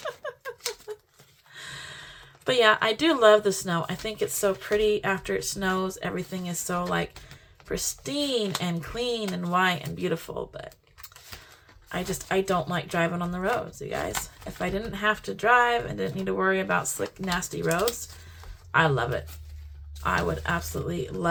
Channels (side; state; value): both; identical; correlation 1.00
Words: But yeah, I do love the snow. I think it's so pretty after it snows. Everything is so like pristine and clean and white and beautiful. But I don't like driving on the roads, you guys. If I didn't have to drive and didn't need to worry about slick, nasty roads, I love it. I would absolutely